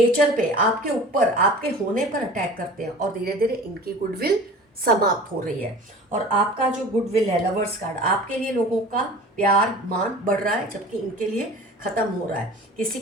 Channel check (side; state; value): both; normal; correlation 0.41